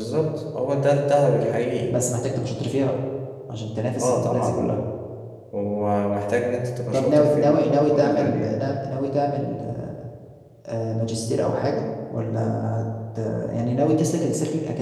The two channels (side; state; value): both; identical; correlation 1.00